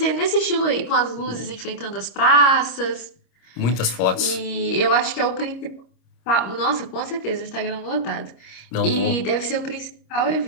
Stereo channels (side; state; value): right; late; 26 ms